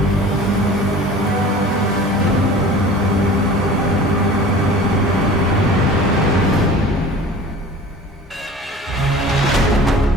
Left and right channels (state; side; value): normal; both; correlation 0.42